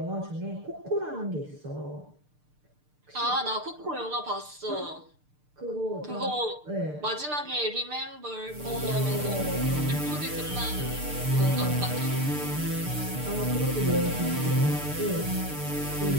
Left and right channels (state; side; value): late; left; 6.7 ms